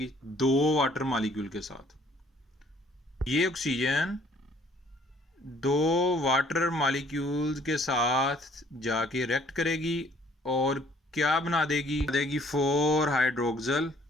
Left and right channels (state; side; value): normal; both; correlation 0.60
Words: 2 वाटर मॉलिक्यूल के साथ। ये ऑक्सीजन 2 वाटर मॉलिक्यूल्स के साथ जाके रिएक्ट करेगी और क्या बना देगी? 4 हाइड्रोक्सल